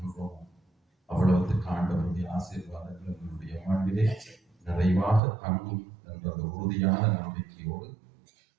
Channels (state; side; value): drops out; left; at 5.2 s